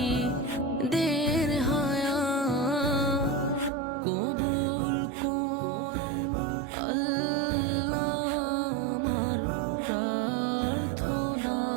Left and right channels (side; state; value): left; drops out; at 3.7 s